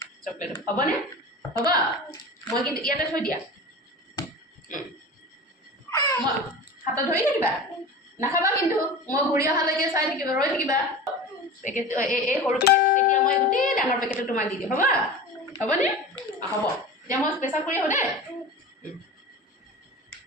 চকলেট হ'বনে হ'ব মই কিন্তু ইয়াতে থৈ দিয়া মই হাতত ধৰি থাকিবা নাখাবা কিন্তু মই ঘূৰি অহালৈকে চাই থাকিবা ৰৈ থাকিবা পেকেট এই সৰু পেকেট তেতিয়া মই গোটেই ডাঙৰ পেকেটটো তোমাক দি দিম হ'ব হ'বনে হ'ব এতিয়া মই পেচাব কৰি আহোঁ দেই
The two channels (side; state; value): both; normal; correlation 0.33